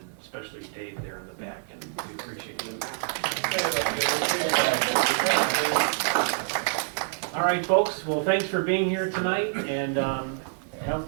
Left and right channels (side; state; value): left; silent; digital silence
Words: especially Dave there in the back, and we appreciate it. All right, folks, well, thanks for being here tonight, and